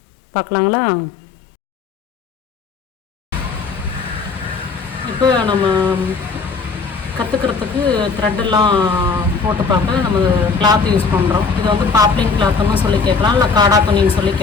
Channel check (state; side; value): quieter; right; 4.8 dB